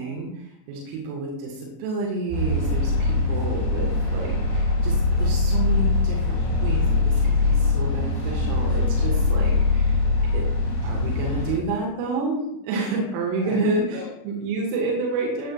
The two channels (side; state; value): left; late; 36 ms